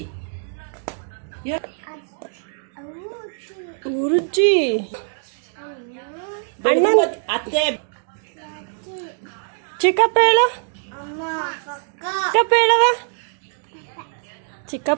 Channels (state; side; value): silent; left; digital silence